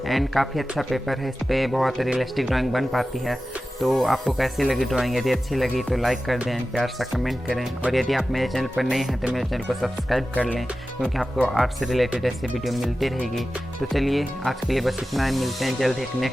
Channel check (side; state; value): both; normal; correlation 0.94